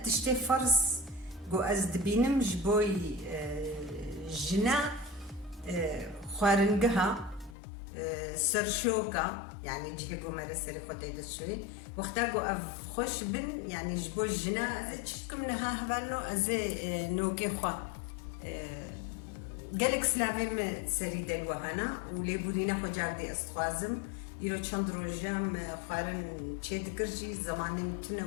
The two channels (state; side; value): drops out; right; at 7.6 s